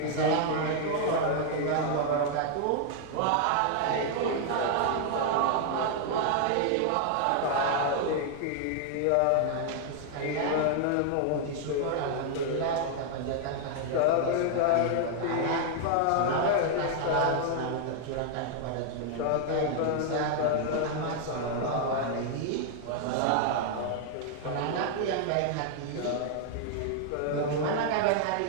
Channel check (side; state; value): both; different; correlation 0.00